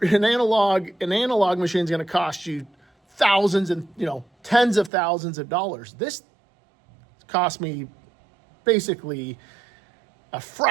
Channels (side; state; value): left; drops out; at 4.9 s